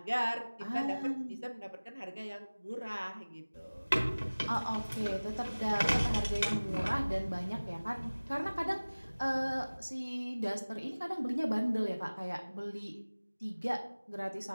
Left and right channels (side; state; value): both; inverted; correlation -1.00